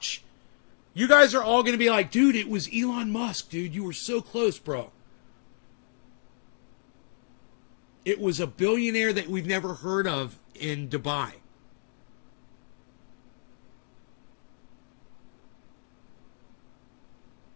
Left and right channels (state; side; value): silent; right; digital silence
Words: You guys are all going to be like, dude, it was Elon Musk, dude. You were so close, bro. It was a billionaire that we've never heard of in Dubai.